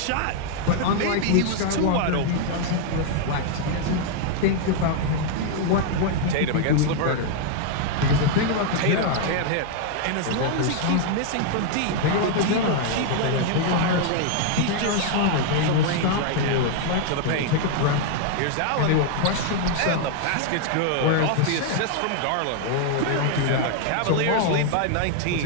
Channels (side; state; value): both; different; correlation 0.00